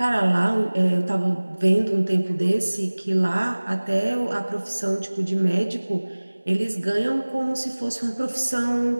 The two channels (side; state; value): both; inverted; correlation -1.00